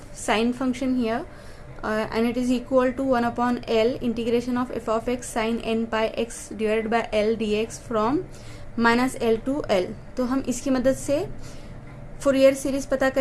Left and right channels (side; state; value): both; identical; correlation 1.00